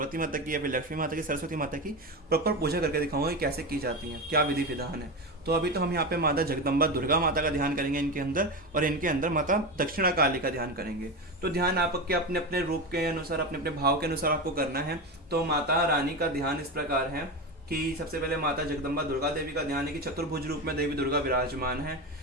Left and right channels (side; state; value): both; normal; correlation 0.20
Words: माता की या फिर लक्ष्मी माता की, सरस्वती माता की प्रॉपर पूजा करके दिखाऊंगा कि कैसे की जाती है, क्या विधि विधान है। तो अभी तो हम यहाँ पे माता जगदम्बा दुर्गा माता का ध्यान करेंगे इनके अंदर, और इनके अंदर माता दक्षिणा काली का ध्यान करेंगे। तो ध्यान आपके अपने अपने रूप के अनुसार, अपने अपने भाव के अनुसार आपको करना है। तो माता रानी का ध्यान इस प्रकार है कि सबसे पहले माता जगदम्बा दुर्गा देवी का ध्यान है कि चतुर्भुज रूप में देवी दुर्गा विराजमान है,